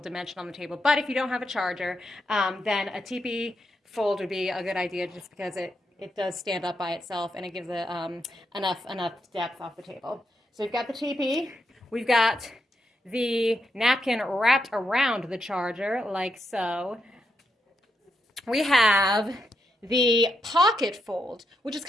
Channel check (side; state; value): both; normal; correlation 0.82